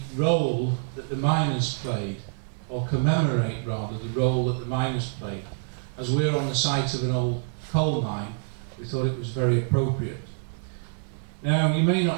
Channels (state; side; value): silent; left; digital silence